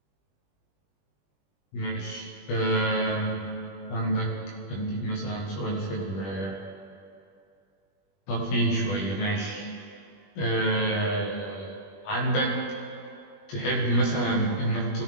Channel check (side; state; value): right; late; 20 ms